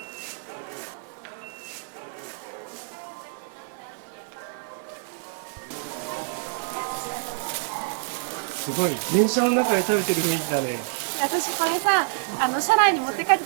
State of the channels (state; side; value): silent; left; digital silence